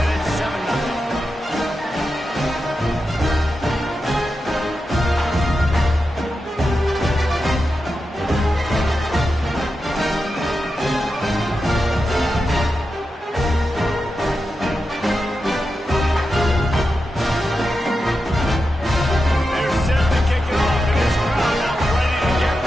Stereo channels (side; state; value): both; normal; correlation 0.89